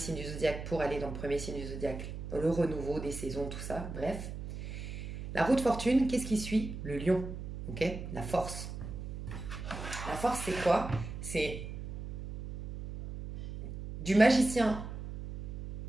du zodiaque pour aller dans le premier signe du zodiaque. Le renouveau des saisons, tout ça, bref. La roue de fortune, qu'est-ce qui suit? Le lion, ok? La force. La force, c'est quoi? C'est du magicien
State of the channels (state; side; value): noise; right; hum, 8 dB below the sound